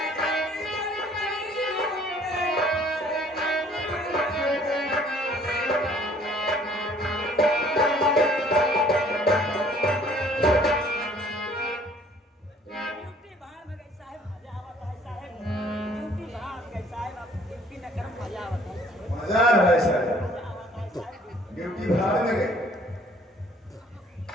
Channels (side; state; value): both; normal; correlation 0.57